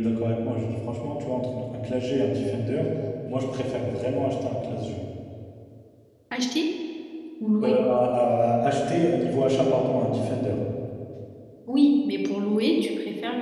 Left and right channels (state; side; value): identical; both; correlation 1.00